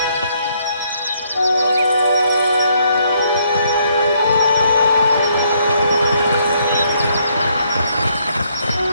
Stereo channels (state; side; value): inverted; both; correlation -0.70